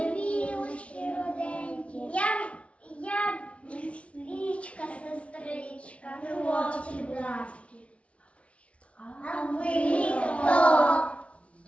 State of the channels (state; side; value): late; right; 0.062 ms